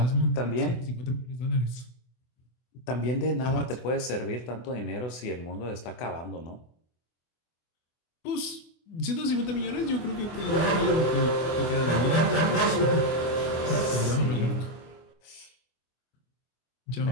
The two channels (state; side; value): late; right; 24 ms